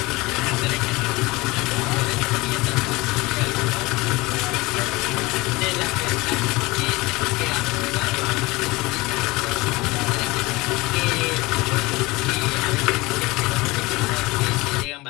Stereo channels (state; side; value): quieter; right; 22.3 dB